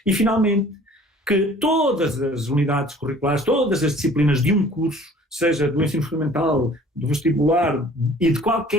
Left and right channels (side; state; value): both; normal; correlation 0.51